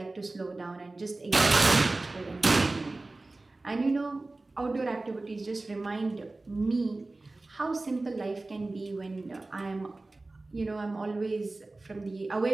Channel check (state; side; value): quieter; left; 3.1 dB